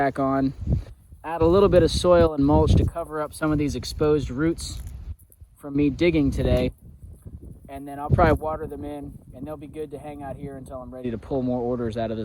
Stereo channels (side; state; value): both; identical; correlation 1.00